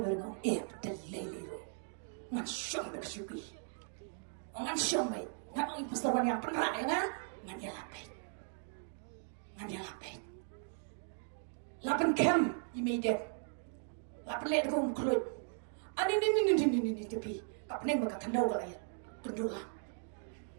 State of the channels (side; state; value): left; silent; 53 dB below the other